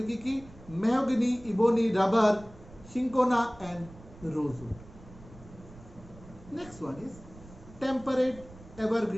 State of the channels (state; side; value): noise; right; rumble, 20 dB below the sound